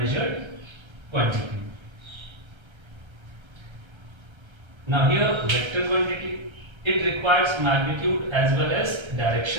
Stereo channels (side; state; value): left; late; 1.3 ms